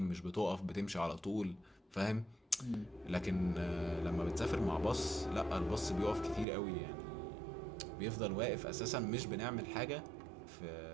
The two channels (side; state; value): left; drops out; at 6.5 s